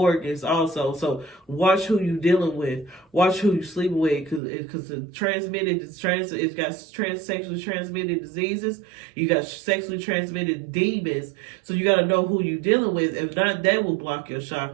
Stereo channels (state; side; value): drops out; left; at 4.4 s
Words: also. So watch who you dealing with. Watch who you sleeping with, because it's got sexually transmitted diseases. You got sexually transmitted demons. So you got to know who you dealing with. If not, that will block your